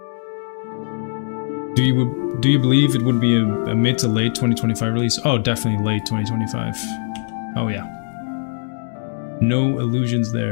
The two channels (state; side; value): silent; right; digital silence